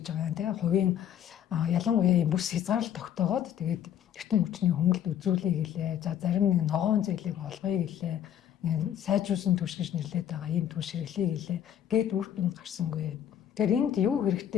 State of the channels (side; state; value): right; quieter; 10.1 dB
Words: байгаа юм тий. Хувийн ялангуяа ийм бүс хязгаарлалт тогтоогоод тэгээд эрчим хүчний хөнгөлт үзүүлэе гэлээ. За зарим нэг ногоон зээлийг олгоё гэлээ. Сайжруулсан түвш гэж нэрлэдэг байгаа ийм түвш хэрэглэе гэлээ. Гээд үр дүн гарсангүй. Тэгэхээр энд юу